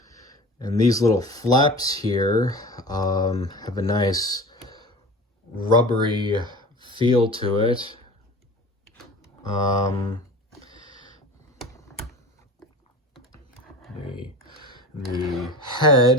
And these little flaps here have a nice rubbery feel to it. The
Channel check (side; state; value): both; normal; correlation 0.36